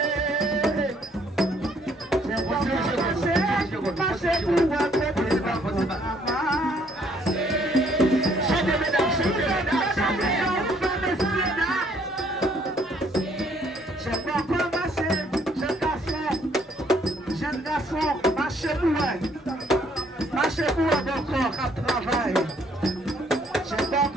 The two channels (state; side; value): normal; both; correlation 0.65